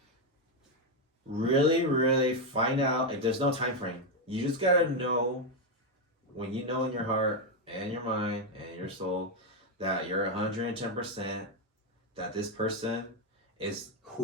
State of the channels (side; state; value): both; normal; correlation 0.04